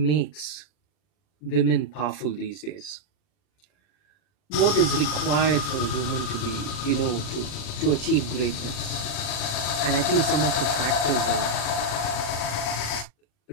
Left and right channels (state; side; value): late; right; 40 ms